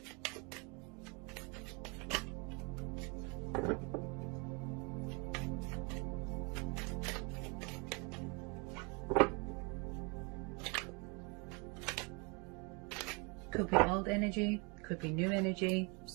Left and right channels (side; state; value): left; quieter; 31.7 dB